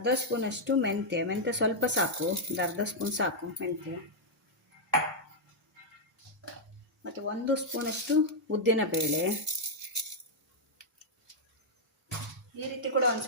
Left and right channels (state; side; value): normal; both; correlation -0.05